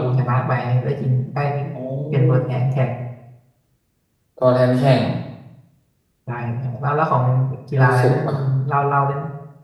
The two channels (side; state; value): both; identical; correlation 1.00